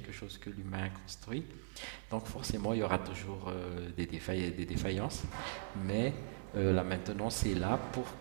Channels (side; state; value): left; silent; digital silence